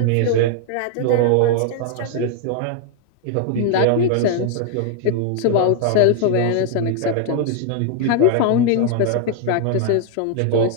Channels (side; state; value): both; different; correlation 0.00